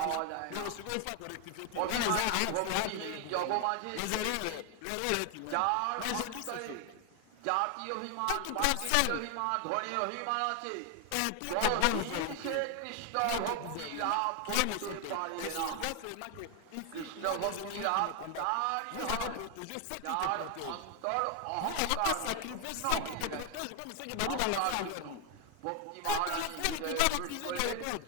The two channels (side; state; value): both; different; correlation 0.01